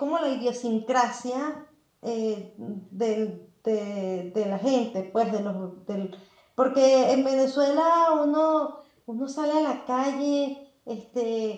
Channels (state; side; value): identical; both; correlation 1.00